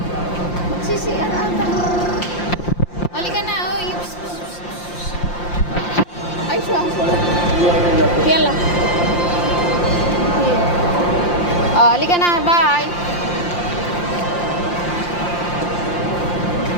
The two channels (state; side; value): late; right; 5.7 ms